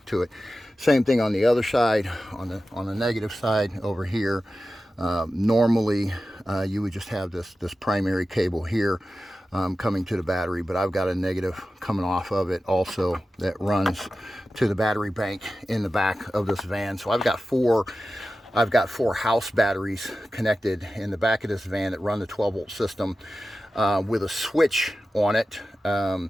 to it. Same thing on the other side, on the negative side over here. Normally you would just have this primary cable here coming to the battery, but I've got a negative coming off of it also that runs to the battery bank in the back of this van. So I've got four house batteries connected in the back of this van that run the 12-volt system with a switch on it,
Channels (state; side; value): normal; both; correlation 0.94